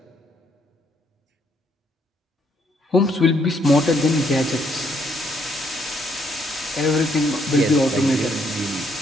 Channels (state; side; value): normal; both; correlation 0.71